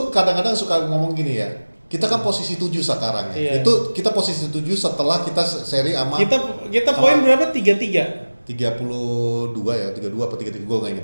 kadang-kadang suka ngomong gini ya. Kita kan posisi 7 sekarang ya. Itu kita posisi 7 setelah kita seri sama kita poin berapa? 33. 32 ya, 32 apa 33 gue nggak inget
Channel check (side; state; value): both; inverted; correlation -1.00